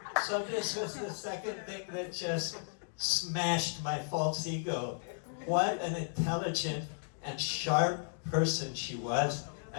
So this was the second thing that just smashed my false ego. What an intelligent and sharp person she was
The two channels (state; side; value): silent; right; digital silence